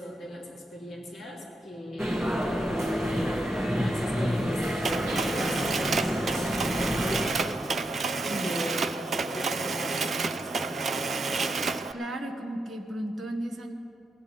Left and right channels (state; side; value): normal; both; correlation 0.84